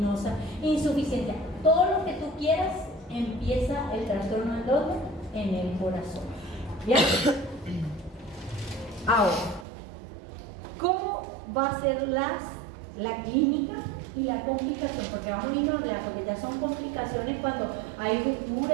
insuficiencia, todo lo que tú quieras, empieza el trastorno en dónde? En el corazón. ¿Ya? Ahora, ¿cómo va a ser la clínica y la complicación? Porque vamos a irnos a hablar, porque ya son complicaciones cuando hay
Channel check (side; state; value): left; drops out; at 9.7 s